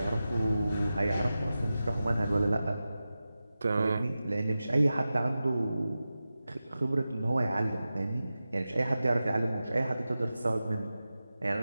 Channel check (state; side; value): inverted; both; correlation -0.94